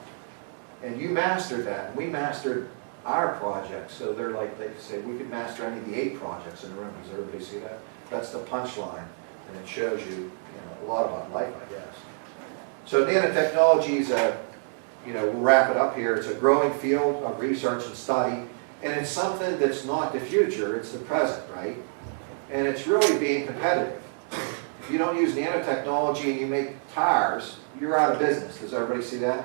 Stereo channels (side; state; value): left; silent; 60 dB below the other